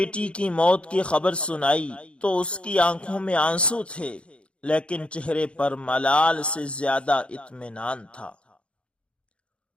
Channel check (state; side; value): late; right; 0.059 ms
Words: کی موت کی خبر سنائی تو اس کی آنکھوں میں آنسو تھے، لیکن چہرے پر ملال سے زیادہ اطمینان تھا۔